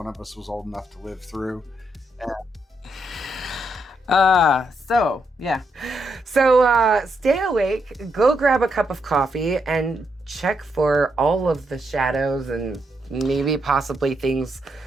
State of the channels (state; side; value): normal; both; correlation 0.79